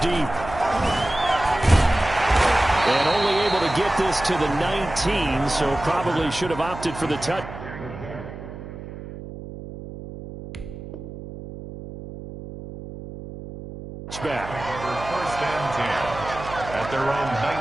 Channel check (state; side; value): noise; right; hum, 12 dB below the sound